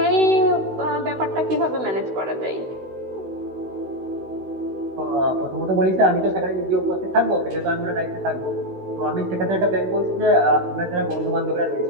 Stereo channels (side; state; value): left; late; 16 ms